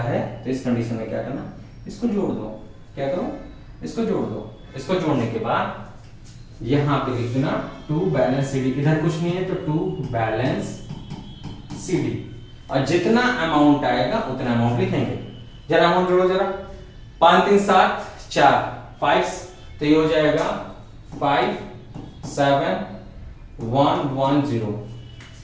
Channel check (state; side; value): identical; both; correlation 1.00